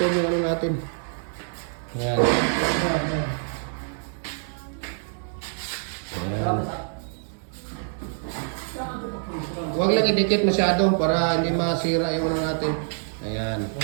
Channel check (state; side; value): silent; left; 61 dB below the other